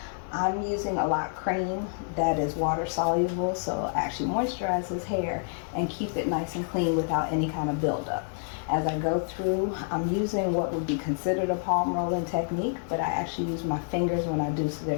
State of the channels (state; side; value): silent; right; digital silence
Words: I'm using a lock cream that is water soluble, so actually moisturize his hair and keep it nice and clean without any kind of buildup. As I go through, I'm using what would be considered a palm rolling technique, but I actually use my fingers when I do, so